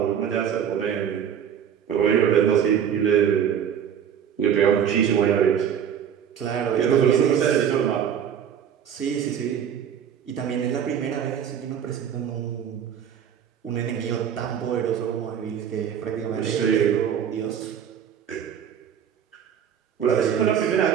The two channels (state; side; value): quieter; left; 8.7 dB